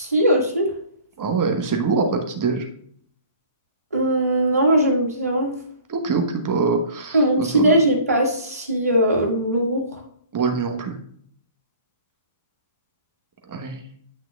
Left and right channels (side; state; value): both; inverted; correlation -0.46